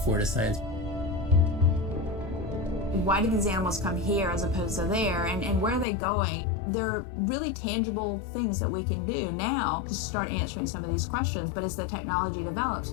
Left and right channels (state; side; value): drops out; right; at 5.9 s